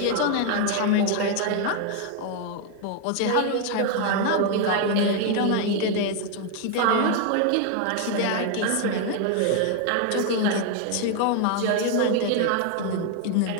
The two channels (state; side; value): different; both; correlation 0.01